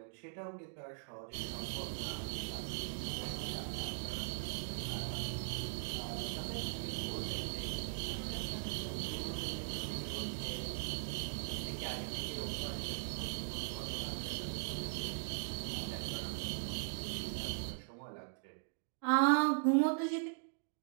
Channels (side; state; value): left; silent; digital silence